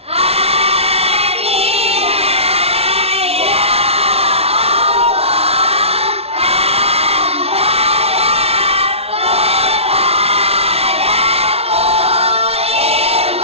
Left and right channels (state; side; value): late; left; 0.30 ms